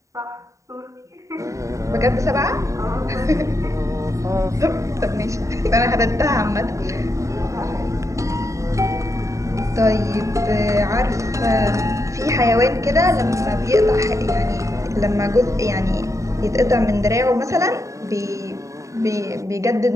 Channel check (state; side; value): late; left; 0.15 ms